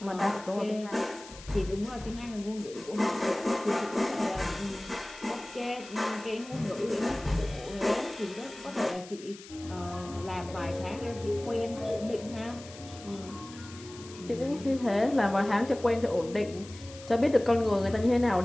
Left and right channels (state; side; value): noise; left; hiss, 17 dB below the sound